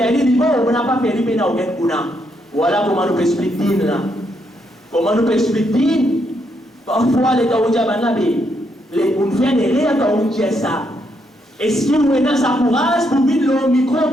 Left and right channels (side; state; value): both; normal; correlation 0.77